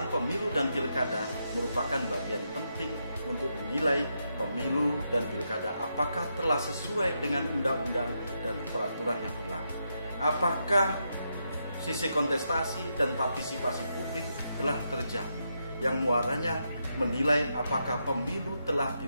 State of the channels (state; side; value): inverted; both; correlation -0.82